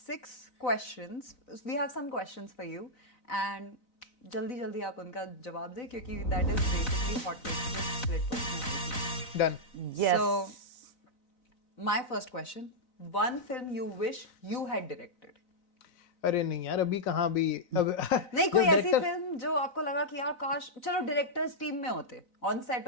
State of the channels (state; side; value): late; right; 4.0 ms